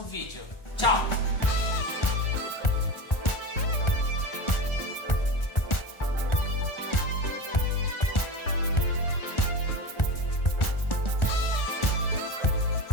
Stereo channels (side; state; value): right; late; 1.4 ms